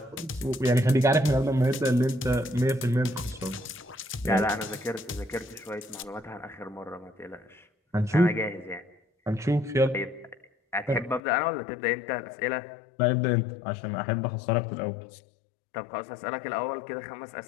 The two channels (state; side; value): drops out; right; at 11.2 s